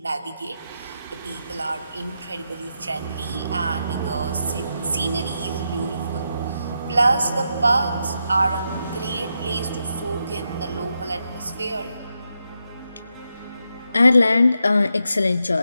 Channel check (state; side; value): inverted; both; correlation -0.84